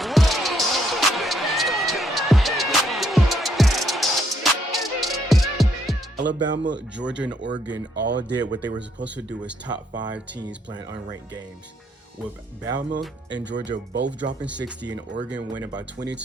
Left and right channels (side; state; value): both; normal; correlation 0.71